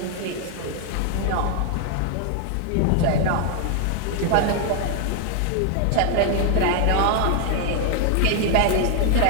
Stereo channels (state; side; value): different; both; correlation 0.00